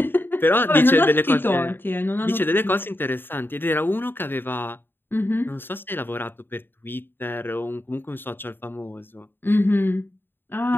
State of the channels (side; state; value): right; late; 0.099 ms